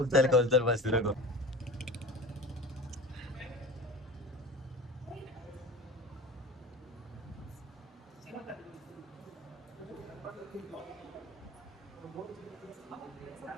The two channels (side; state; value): both; normal; correlation 0.35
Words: कोलचल बस नको.